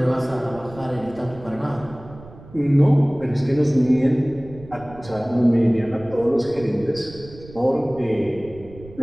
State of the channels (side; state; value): right; noise; rumble, 19 dB below the sound